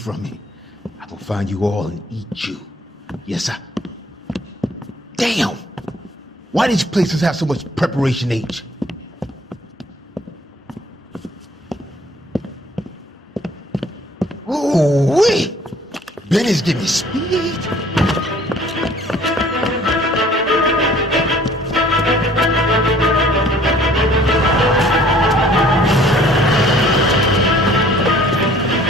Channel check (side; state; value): both; normal; correlation 0.55